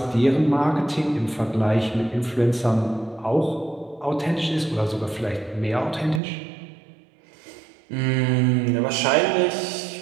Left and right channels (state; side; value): drops out; left; at 6.2 s